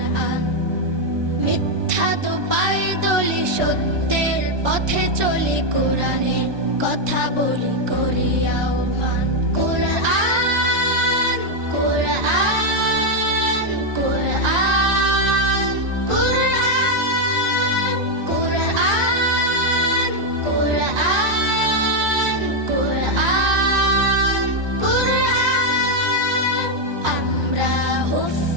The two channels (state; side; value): late; left; 1.2 ms